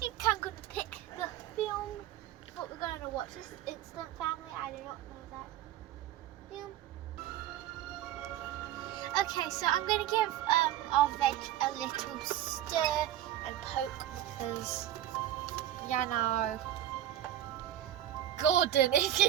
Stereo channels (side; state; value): left; quieter; 12.4 dB